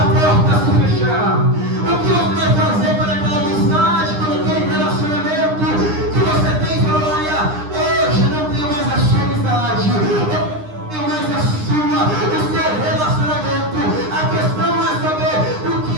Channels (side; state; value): left; late; 9.8 ms